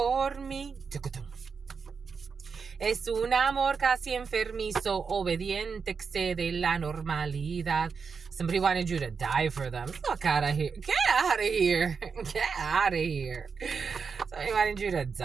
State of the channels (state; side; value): quieter; left; 5.6 dB